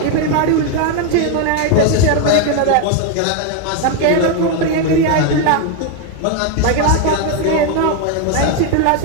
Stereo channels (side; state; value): both; different; correlation 0.01